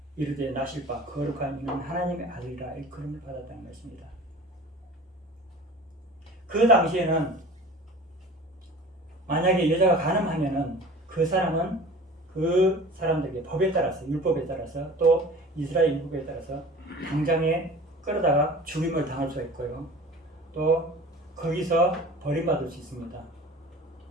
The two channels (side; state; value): both; normal; correlation 0.41